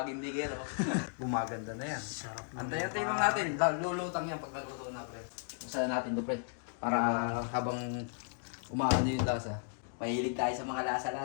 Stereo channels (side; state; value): right; silent; 54 dB below the other